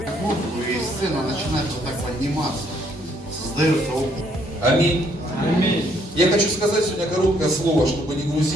музыку и сцена начинают вот так подниматься, создается опыт. Аминь. Аминь. Я хочу сказать сегодня короткое слово, чтобы не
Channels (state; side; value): normal; both; correlation 0.68